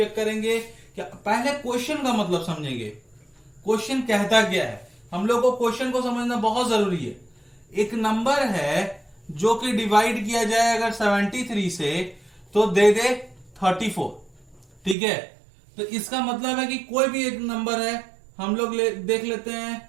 करेंगे कि पहले क्वेश्चन का मतलब समझेंगे, क्वेश्चन कहता क्या है। हम लोग को क्वेश्चन को समझना बहुत जरूरी है। एक नंबर है जो कि डिवाइड किया जाए अगर 73 से तो दे दे 34। ठीक है, तो इसका मतलब है कि कोई भी एक नंबर है, हम लोग देख लेते हैं,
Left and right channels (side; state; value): left; drops out; at 15.0 s